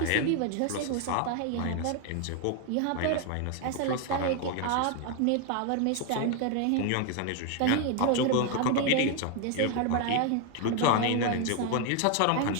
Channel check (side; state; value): both; different; correlation 0.01